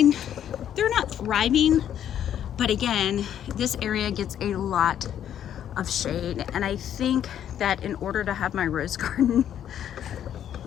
They're not thriving, but again, this area gets a lot of shade, and I think that in order to have my rose garden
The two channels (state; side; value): quieter; right; 10.1 dB